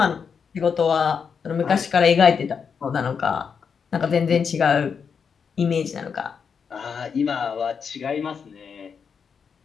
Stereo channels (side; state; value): right; quieter; 6.4 dB